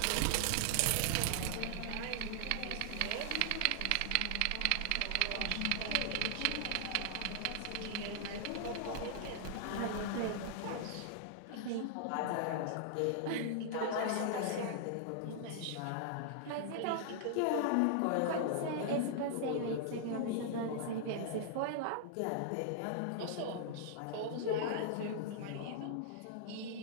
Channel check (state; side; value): different; both; correlation -0.01